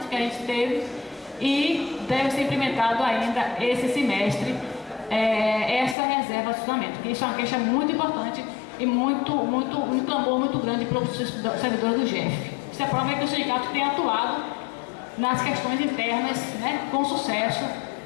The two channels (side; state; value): right; drops out; at 6.0 s